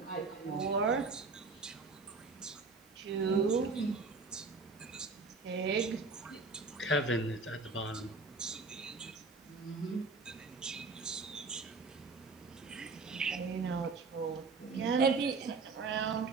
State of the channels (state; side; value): quieter; left; 4.0 dB